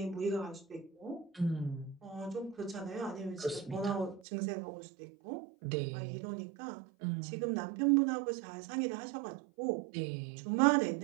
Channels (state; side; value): drops out; left; at 4.2 s